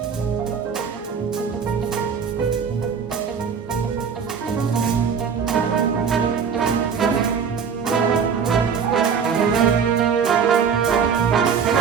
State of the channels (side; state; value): left; quieter; 6.6 dB